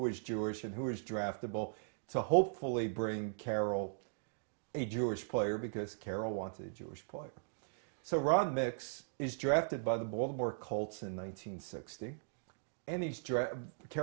Jewish and who was draftable to hopefully bring Carroll a Jewish player, because Carroll wanted a Jewish player. So Ron Mix is drafted by the Baltimore Colts in 1960. And he's Carroll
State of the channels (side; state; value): left; silent; digital silence